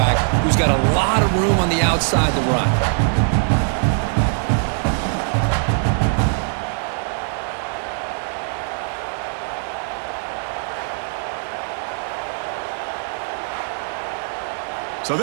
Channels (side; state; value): left; silent; 65 dB below the other